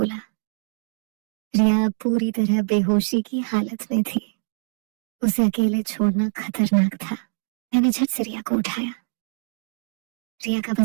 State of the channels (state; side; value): silent; left; digital silence